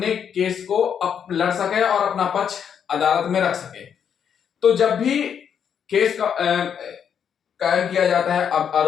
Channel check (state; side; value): quieter; right; 8.0 dB